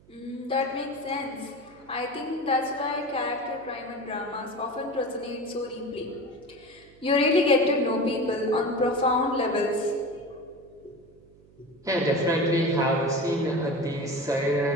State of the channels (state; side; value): noise; right; hum, 27 dB below the sound